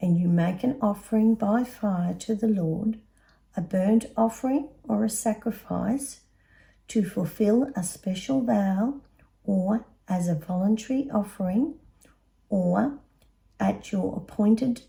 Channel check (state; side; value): identical; both; correlation 1.00